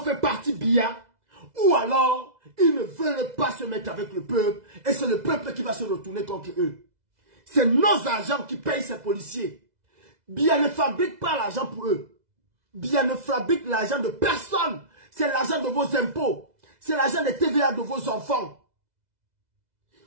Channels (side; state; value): left; late; 2.0 ms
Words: partie Biya. Ou alors, ils ne veulent pas se mettre avec le peuple. Et c'est le peuple qui va se retourner contre eux. C'est nos agents qui payent ces policiers. Biya ne fabrique pas l'argent pour eux. Biya ne fabrique l'argent de personne. C'est l'argent de vos impôts. C'est l'argent des TVA de vos enfants.